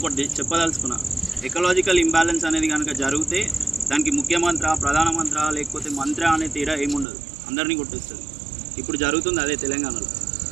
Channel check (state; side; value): drops out; left; at 7.1 s